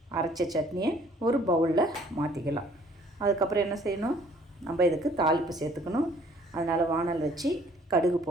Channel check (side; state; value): both; normal; correlation 0.58